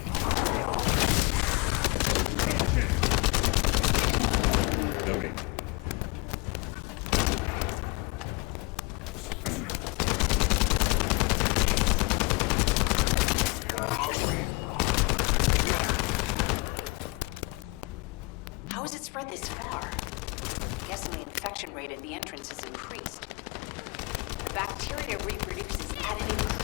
Loading. spread this far? I'm guessing the infection rate at the entrance has increased. The bacteria reproduces at an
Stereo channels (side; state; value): right; quieter; 27.4 dB